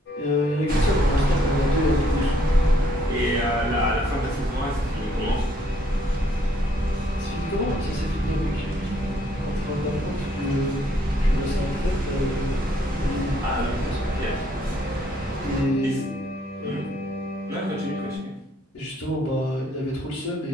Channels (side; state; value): both; normal; correlation 0.68